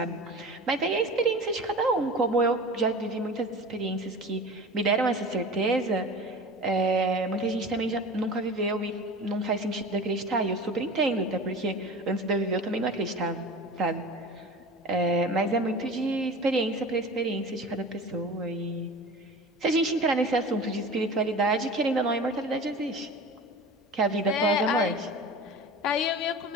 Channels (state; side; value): normal; both; correlation 0.35